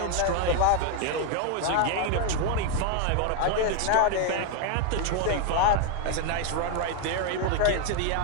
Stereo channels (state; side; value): different; both; correlation 0.01